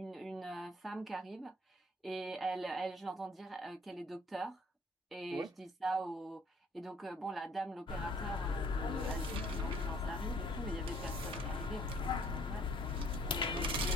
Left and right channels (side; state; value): both; normal; correlation 0.60